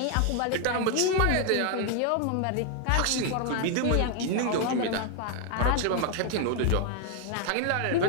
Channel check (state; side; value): different; both; correlation 0.00